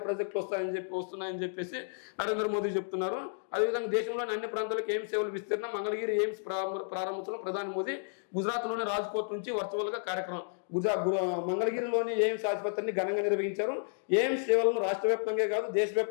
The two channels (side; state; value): right; silent; digital silence